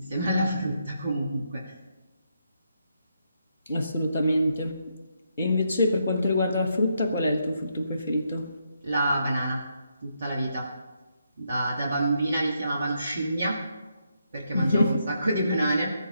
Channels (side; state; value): both; inverted; correlation -0.78